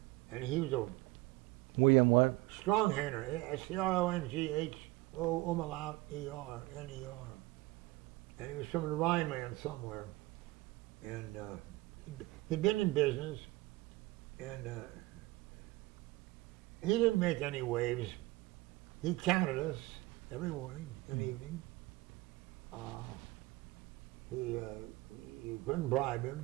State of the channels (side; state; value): left; quieter; 20.2 dB